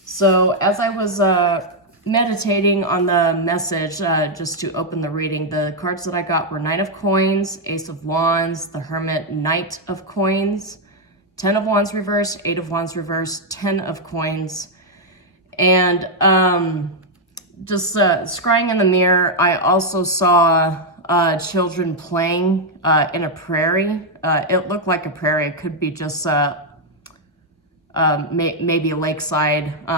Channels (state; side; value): normal; both; correlation 0.00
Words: So as I was meditating on the message, just to open the reading, the cards that I got were Knight of Coins, Ace of Wands, the Hermit, Knight of Coins, 10 of Wands reversed, 8 of Wands reversed, 10 of Coins. And just scrying in the mirror, I also saw children playing in a prairie. It looked like a prairie. It could be just maybe a lakeside.